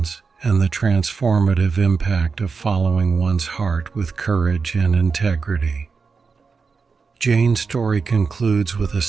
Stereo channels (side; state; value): left; quieter; 5.0 dB